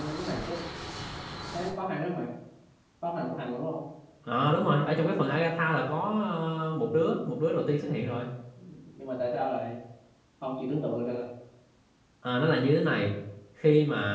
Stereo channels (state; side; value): identical; both; correlation 1.00